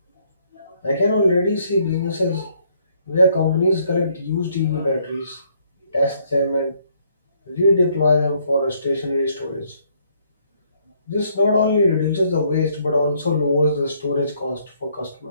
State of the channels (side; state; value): both; inverted; correlation -0.68